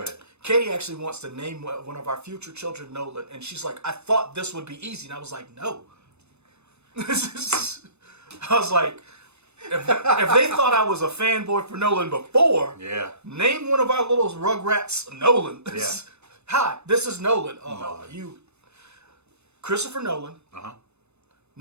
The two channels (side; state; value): left; late; 0.81 ms